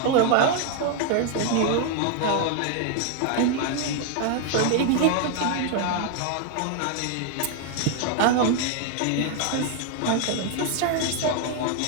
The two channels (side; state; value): both; different; correlation 0.00